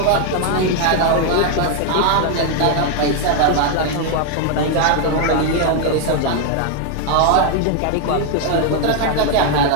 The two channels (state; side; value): different; both; correlation 0.00